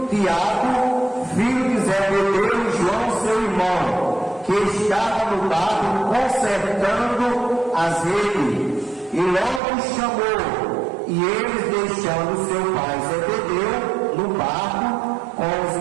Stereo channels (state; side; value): drops out; left; at 9.6 s